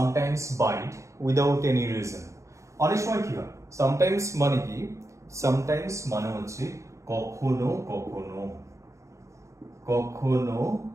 bite without any reason. অনেক সময় কি হয়, সামটাইমস মানে কি, সামটাইমস মানে হচ্ছে কখনো কখনো, কখনো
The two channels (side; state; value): left; late; 0.15 ms